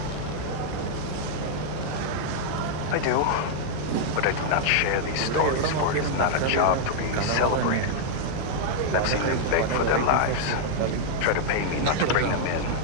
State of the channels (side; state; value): both; different; correlation -0.01